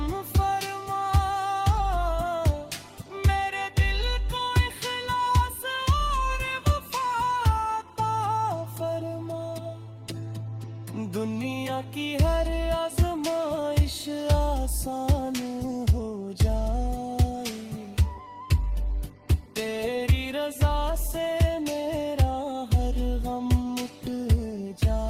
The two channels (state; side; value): identical; both; correlation 1.00